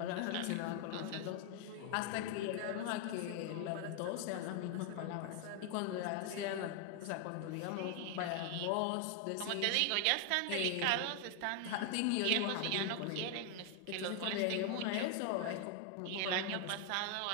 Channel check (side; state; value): both; different; correlation 0.00